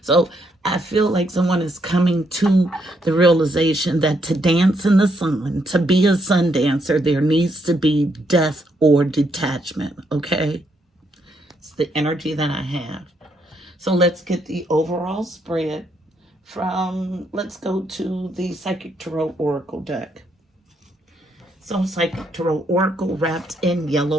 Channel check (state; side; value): normal; both; correlation 0.76